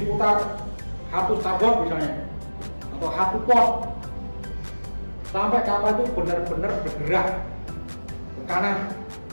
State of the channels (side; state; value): both; inverted; correlation -1.00